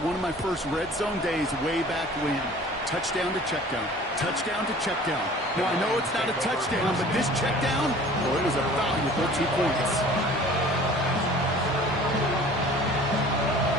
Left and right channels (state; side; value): normal; both; correlation 0.47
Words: of my first red zone days way back when. Touchdown to check down. Touchdown to check down. Now, I know it's not a touchdown, but this check down, well, it was a valuable 2 points.